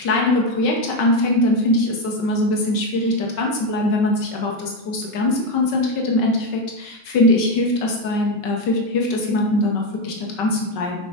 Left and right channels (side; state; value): right; late; 5.3 ms